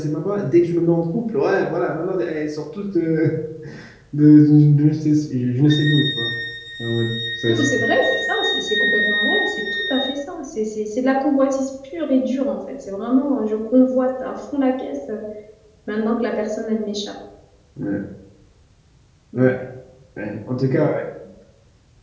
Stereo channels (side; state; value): both; identical; correlation 1.00